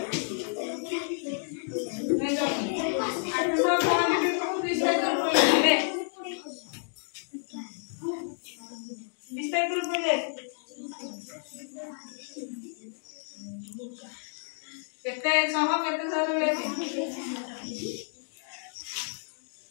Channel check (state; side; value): silent; right; digital silence